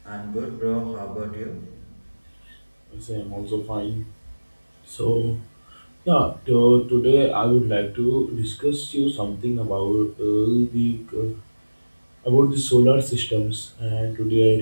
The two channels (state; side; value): inverted; both; correlation -1.00